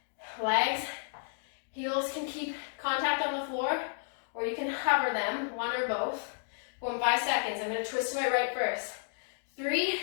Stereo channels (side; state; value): right; silent; digital silence